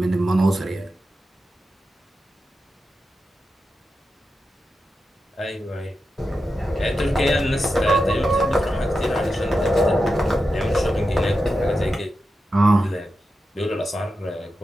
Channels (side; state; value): both; normal; correlation 0.90